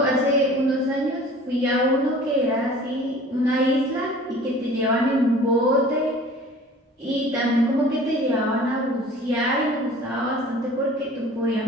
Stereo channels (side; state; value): both; normal; correlation 0.46